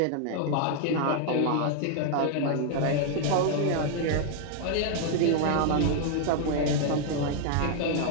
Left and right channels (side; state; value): both; different; correlation 0.00